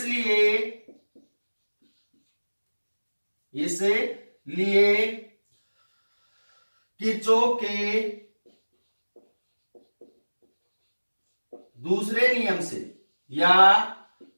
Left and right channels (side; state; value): both; inverted; correlation -1.00